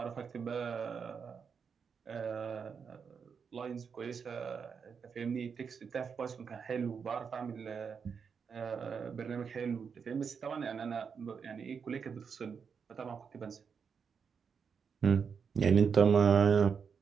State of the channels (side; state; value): left; quieter; 6.2 dB